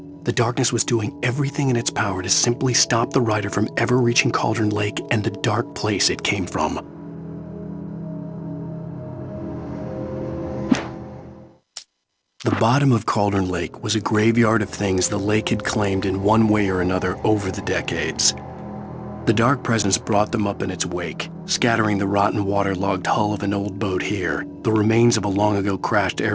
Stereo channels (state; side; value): identical; both; correlation 1.00